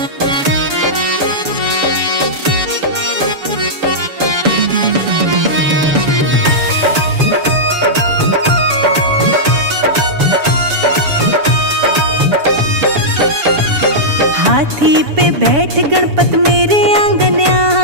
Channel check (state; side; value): late; left; 7.0 ms